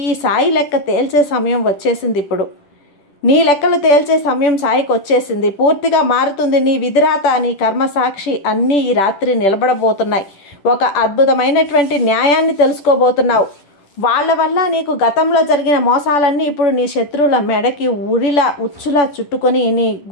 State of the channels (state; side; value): late; right; 10 ms